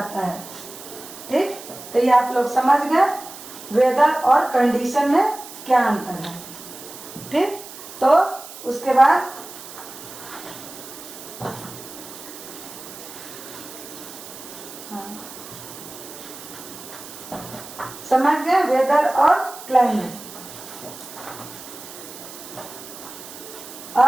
है। ठीक, तो ये आप लोग समझ गए वेदर और कंडीशन में क्या अंतर है। ठीक, तो उसके बाद समझ गए वेदर और क्लाइमेट।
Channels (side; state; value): right; noise; hiss, 14 dB below the sound